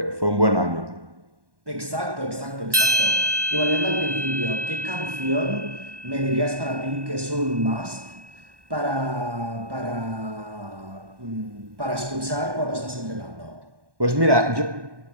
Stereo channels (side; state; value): left; late; 1.1 ms